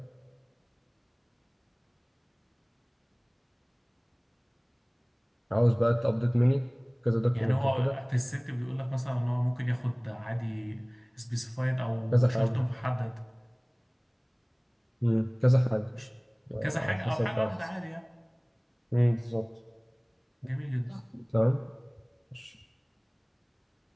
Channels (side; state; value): both; identical; correlation 1.00